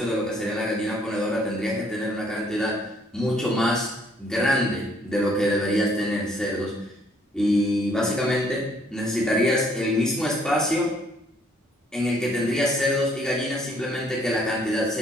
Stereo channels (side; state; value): both; normal; correlation 0.65